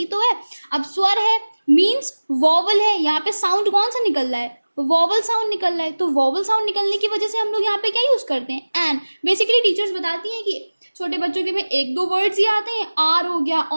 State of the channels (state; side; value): inverted; both; correlation -1.00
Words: तो है. अब स्वर है मीन्स वॉवल है. यहाँ पे साउंड कौन सा निकल रहा है, वॉवल साउंड निकल रहा है. तो वॉवल साउंड निकलने की वजह से हम लोग यहाँ पे क्या यूज करते हैं, एन. बेसिकली टीचर्स बताती हैं कि छोटे बच्चों के में एक दो वर्ड्स ही आते हैं, आर हो गया,